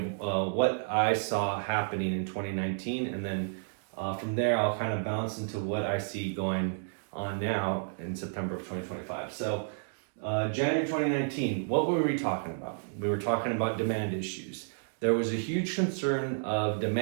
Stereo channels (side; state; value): left; silent; digital silence